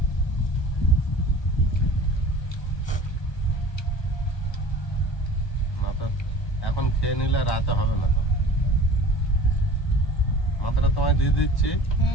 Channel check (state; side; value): late; right; 1.2 ms